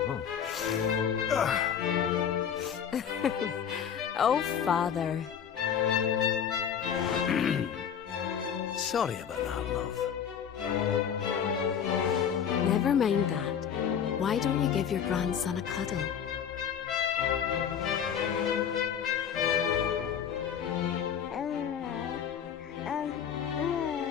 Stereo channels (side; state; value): right; quieter; 8.2 dB